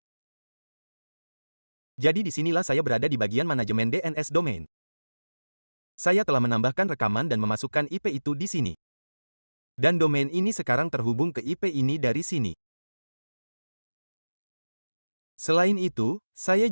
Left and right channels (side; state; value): both; inverted; correlation -1.00